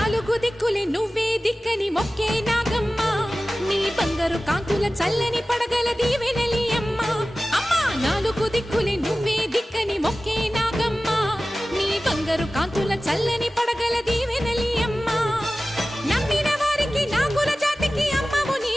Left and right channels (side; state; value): both; normal; correlation 0.96